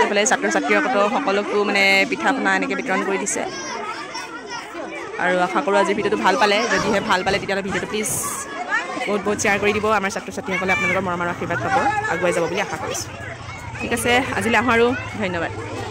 এইফালে ছাত্ৰ ছাত্ৰীসকলক সকলোকো মানে পিঠা পনা এনেকৈ বিতৰণ কৰি দিছে আৰু আশা কৰোঁ আজিৰ ভিডিঅ'টো ভাল পালে যদিহে ভাল পালে তেতিয়াহ'লে ভিডিঅ'টো প্লিজ বহুত বহুত শ্বেয়াৰ কৰি দিব আমাৰ ছাত্ৰ ছাত্ৰীসকলে আপোনালোকৰ মৰমৰ আশীৰ্বাদ পাব আগুৱাই যাব বুলি আশা কৰিছোঁ ঠিক আছে আজিলৈ আহোঁ আৰু ধন্যবাদ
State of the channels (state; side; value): identical; both; correlation 1.00